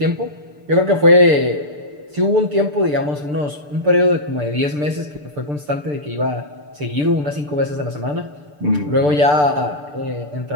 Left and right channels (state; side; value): late; left; 6.8 ms